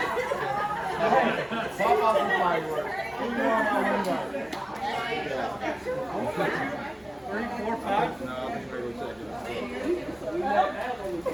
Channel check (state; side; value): noise; left; hum, 29 dB below the sound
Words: Pop off the fireworks. 3, 4, 5? No, I think we're going to check